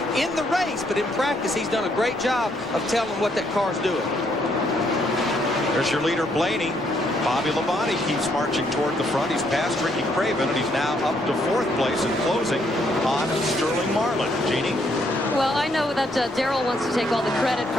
in the race, but in practice he's done a great job of telling what that car's doing. There's your leader, Blaney. Bobby Labonte keeps marching toward the front. He's passed Ricky Craven, and he's now up to 4th place and closing on Sterling Marlin. Jeannie? Well, I know that Darrell wants to take all the credit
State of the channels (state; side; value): normal; both; correlation 0.72